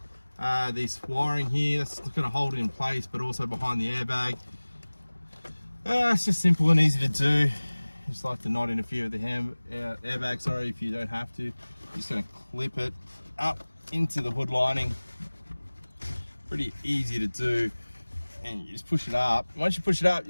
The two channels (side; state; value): both; inverted; correlation -1.00